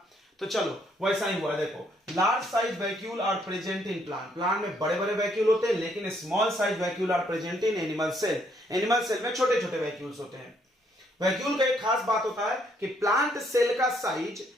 तो चलो वैसा ही हुआ। देखो large size vacuole are present in plant, plant में बड़े बड़े वैक्यूल होते हैं, लेकिन small size vacuole are present in animal cell, animal cell में छोटे छोटे वैक्यूल्स होते हैं। वैक्यूल का एक खास बात होता है कि प्लांट सेल का साइज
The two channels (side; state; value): both; normal; correlation 0.70